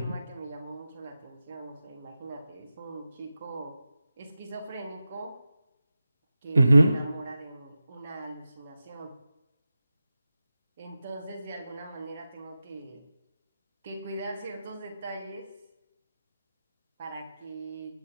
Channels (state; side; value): inverted; both; correlation -0.93